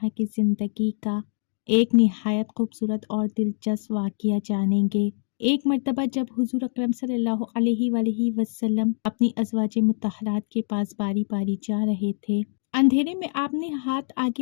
की ज़िंदगी का एक निहायत खूबसूरत और दिलचस्प वाक़या जानेंगे। एक मर्तबा जब हुज़ूर अकरम सल्लल्लाहु अलैहि वसल्लम अपनी अज़वाज मुत्तहरात के पास बारी बारी जा रहे थे, अंधेरे में आपने हाथ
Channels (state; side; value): silent; right; digital silence